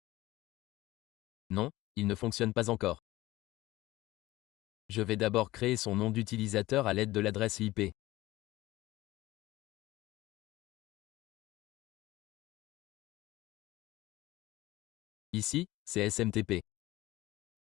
Non, il ne fonctionne pas encore. Je vais d'abord créer son nom d'utilisateur à l'aide de l'adresse IP. Ici, c'est SMTP.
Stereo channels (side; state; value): right; quieter; 17.5 dB